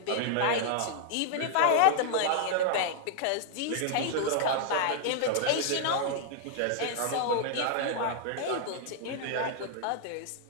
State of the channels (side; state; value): both; different; correlation -0.01